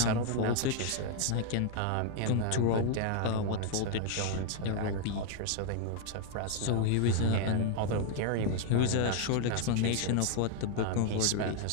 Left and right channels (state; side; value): different; both; correlation 0.00